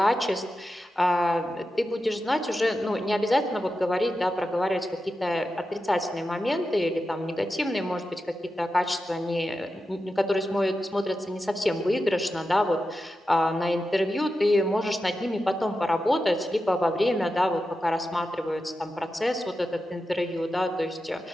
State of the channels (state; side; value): normal; both; correlation 0.91